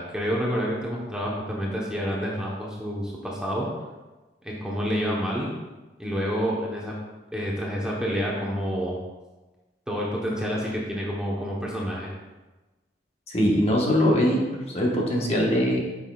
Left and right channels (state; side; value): normal; both; correlation 0.70